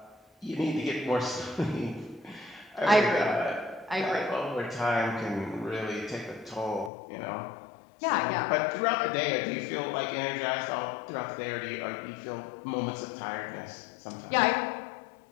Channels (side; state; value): right; drops out; at 6.9 s